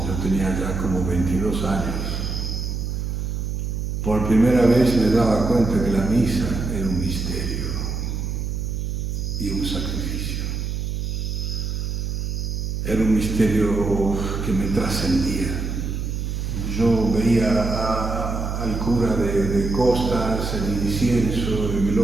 yo tenía ya como 22 años, por primera vez me daba cuenta que la misa era un misterio y un sacrificio. Era un misterio que me trascendía. Yo veía al cura de costas, el incienso, el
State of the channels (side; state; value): right; noise; hum, 2 dB below the sound